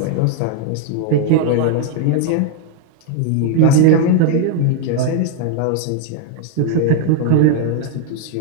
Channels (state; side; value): different; both; correlation 0.00